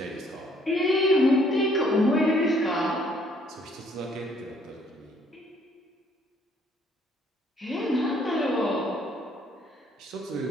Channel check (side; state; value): both; normal; correlation 0.64